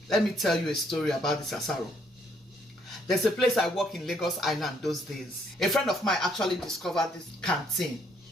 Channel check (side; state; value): both; normal; correlation 0.69